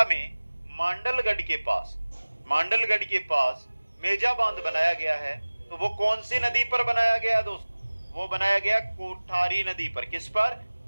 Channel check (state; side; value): inverted; both; correlation -1.00